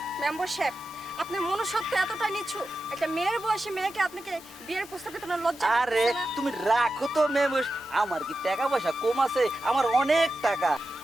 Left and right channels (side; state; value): both; normal; correlation 0.91